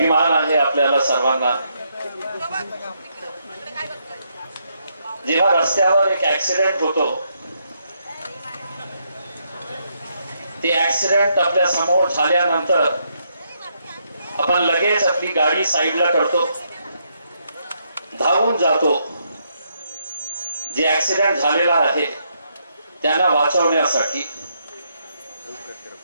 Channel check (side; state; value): both; inverted; correlation -0.76